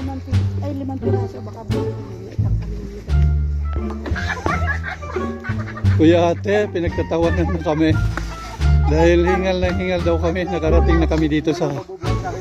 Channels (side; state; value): both; identical; correlation 1.00